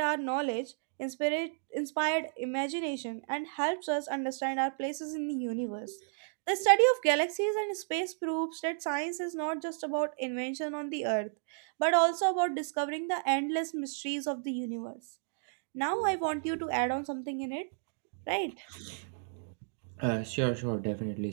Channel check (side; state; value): left; silent; digital silence